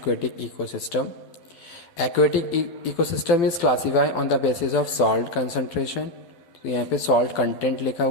ecosystem. Aquatic ecosystem is classified on the basis of salt concentration. तो यहाँ पे salt content लिखा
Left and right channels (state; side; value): late; right; 12 ms